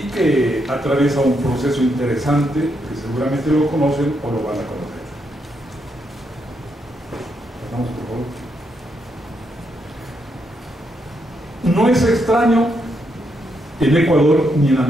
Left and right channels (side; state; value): both; normal; correlation 0.79